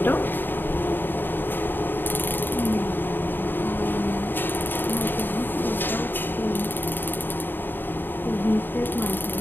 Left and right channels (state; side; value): late; right; 0.095 ms